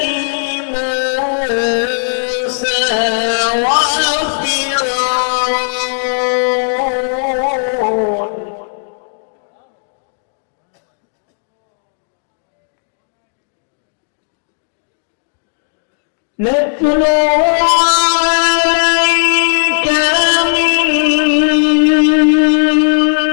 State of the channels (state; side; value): silent; right; digital silence